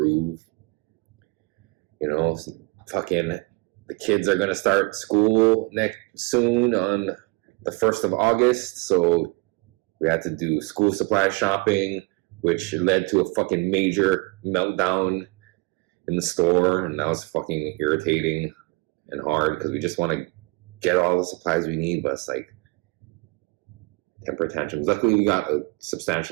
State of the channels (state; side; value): quieter; left; 26.6 dB